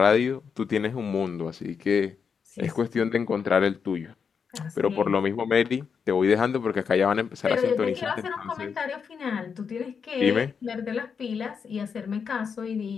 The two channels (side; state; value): right; quieter; 6.3 dB